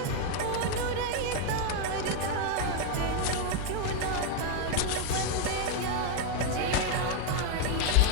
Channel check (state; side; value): different; both; correlation 0.01